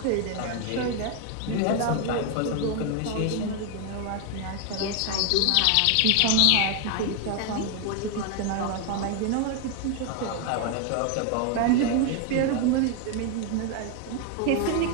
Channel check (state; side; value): different; both; correlation 0.01